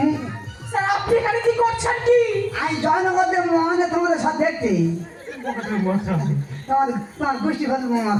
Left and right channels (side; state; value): both; identical; correlation 1.00